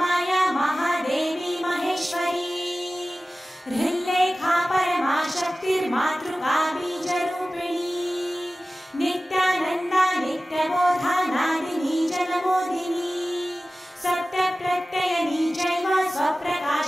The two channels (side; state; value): both; normal; correlation 0.96